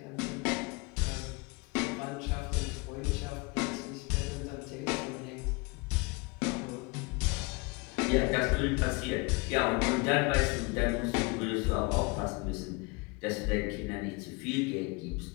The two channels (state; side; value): quieter; right; 27.6 dB